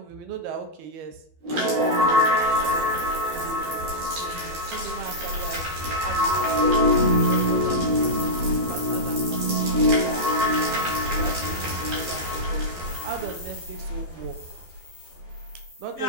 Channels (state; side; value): late; left; 12 ms